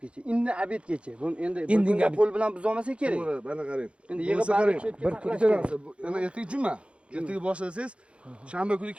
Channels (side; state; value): left; late; 0.059 ms